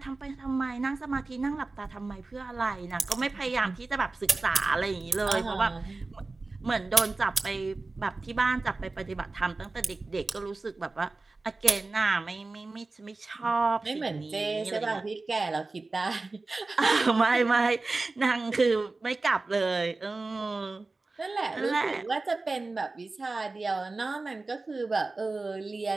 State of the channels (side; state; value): left; quieter; 3.5 dB